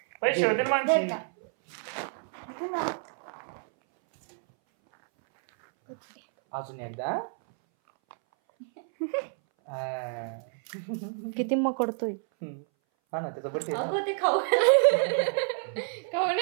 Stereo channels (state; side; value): silent; left; 59 dB below the other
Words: पैसे होते ना माणसी. अजून एकदा. किती मकडतोय. हा ना, त्याचा बर्थडे. अगं ते खाऊ